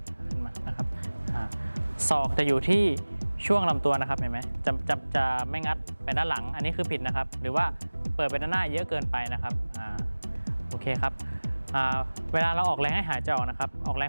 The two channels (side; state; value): both; inverted; correlation -1.00